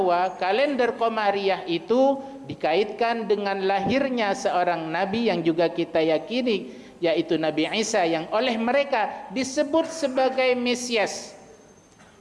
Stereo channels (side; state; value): both; identical; correlation 1.00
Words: kalender qamariyah itu dikaitkan dengan lahirnya seorang nabi yang juga kita yakini, yaitu Nabi Isa, yang oleh mereka disebut sebagai Mesias.